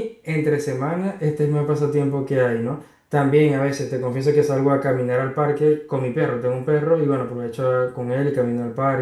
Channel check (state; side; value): identical; both; correlation 1.00